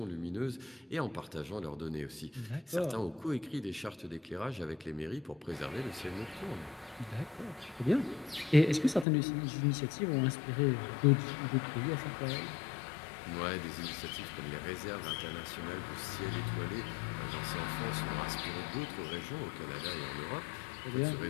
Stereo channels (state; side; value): drops out; right; at 9.1 s